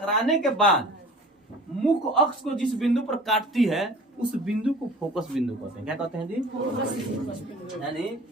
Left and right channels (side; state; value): both; normal; correlation 0.43